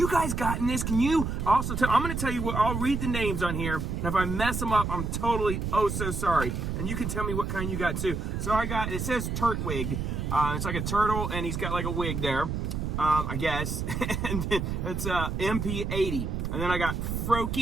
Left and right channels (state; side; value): noise; right; rumble, 2 dB below the sound